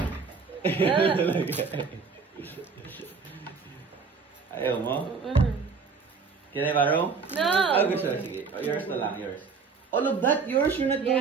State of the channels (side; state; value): left; quieter; 5.2 dB